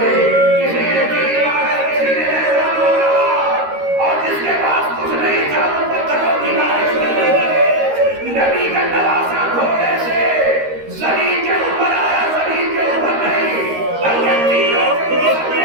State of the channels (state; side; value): late; left; 13 ms